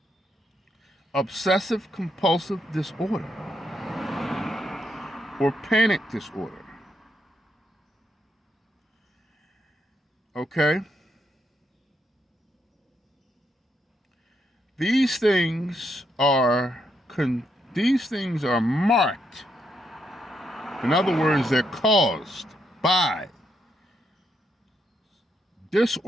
obsessive compulsive disorder, or panic disorder. Okay? These things are marked. In other words, they're caused by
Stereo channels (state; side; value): normal; both; correlation 0.78